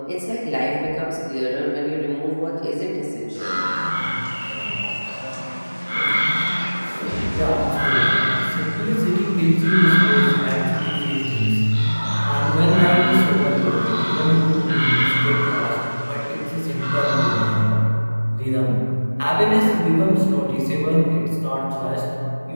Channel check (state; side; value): inverted; both; correlation -1.00